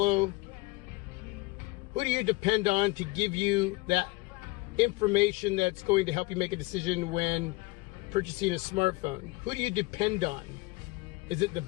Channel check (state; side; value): quieter; right; 23.5 dB